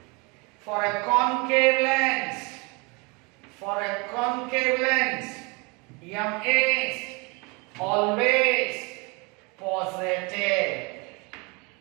For a concave lens, m is always positive.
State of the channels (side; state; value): left; quieter; 29.0 dB